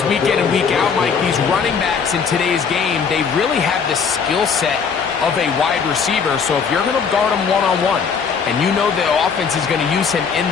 week in and week out, Mike. These running backs in today's game, they really have the skill set of a wide receiver. So if you're going to guard him one-on-one, and you know the offense is going to use him in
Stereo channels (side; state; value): right; quieter; 6.1 dB